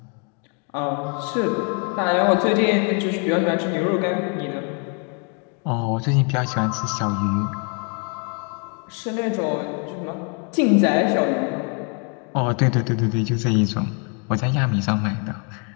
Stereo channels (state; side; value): quieter; right; 36.6 dB